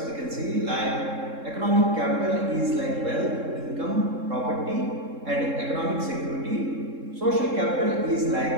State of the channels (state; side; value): late; left; 3.7 ms